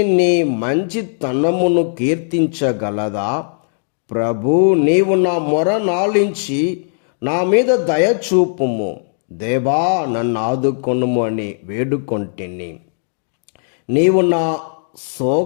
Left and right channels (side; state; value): right; silent; digital silence